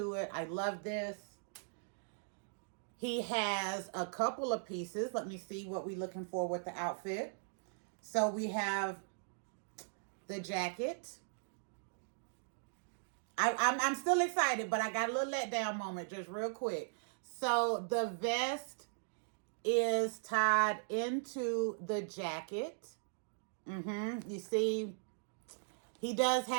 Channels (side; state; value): left; silent; digital silence